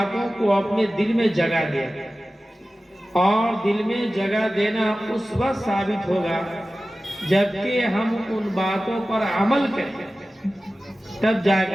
کو اپنے دل میں جگہ دے، اور دل میں جگہ دینا اس وقت ثابت ہوگا جبکہ ہم ان باتوں پر عمل کریں تب جا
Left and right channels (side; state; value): both; normal; correlation 0.96